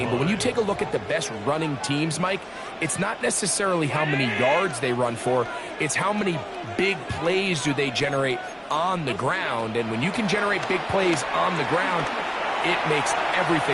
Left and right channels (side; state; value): both; identical; correlation 1.00